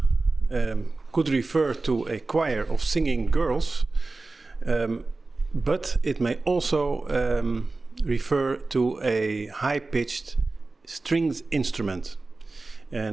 could refer to a choir of singing girls, but it may also refer to a high-pitched stringed instrument.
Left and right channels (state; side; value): quieter; left; 3.4 dB